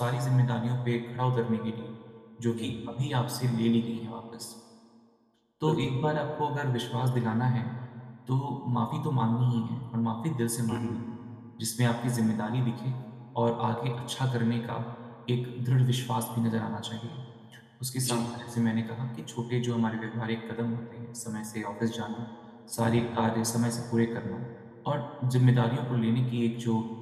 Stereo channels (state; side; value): identical; both; correlation 1.00